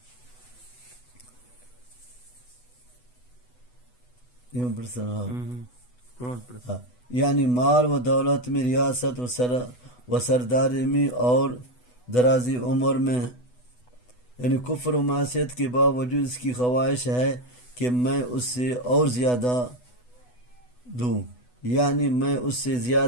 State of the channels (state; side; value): late; right; 8.1 ms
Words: یعنی مال و دولت میں، ریاست و سرداری میں اور درازی عمر میں. یعنی کفر و معصیت کے باوجود اس کی خواہش ہے کہ میں اس سے اور زیادہ دوں، یعنی میں اس سے